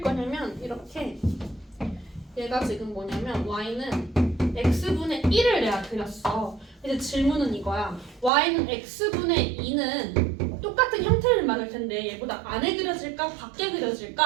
거냐면 이렇게 얘가 지금 뭐냐면 y는 x분의 1을 내가 그렸어. 이제 질문은 이거야. y는 x분의 2는 똑같은 형태를 말할 텐데 얘보다 안에 그려질까 밖에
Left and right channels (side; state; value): left; drops out; at 8.3 s